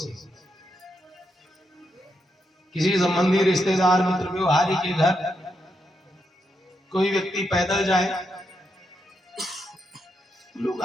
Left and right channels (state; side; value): normal; both; correlation 0.83